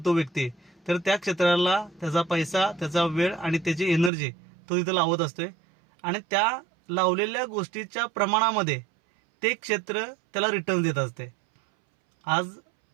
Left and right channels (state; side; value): drops out; left; at 4.1 s